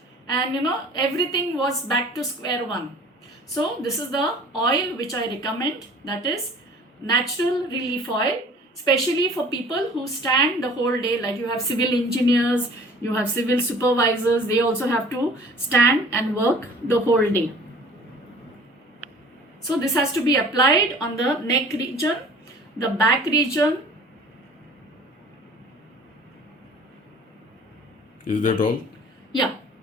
and everything was back to square one. So this is the oil which I recommend, that is natural relief oil, especially for people who stand the whole day. Like you have civil engineers, you have civil supervisors, they also have to stand and work the whole day. So this has to be applied on the neck region, the back region. Is that all? Yeah.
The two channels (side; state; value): both; normal; correlation 0.48